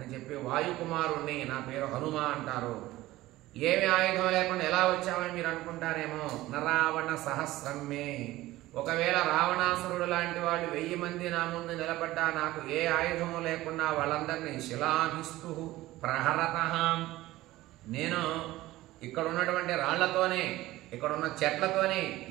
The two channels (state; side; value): quieter; left; 17.0 dB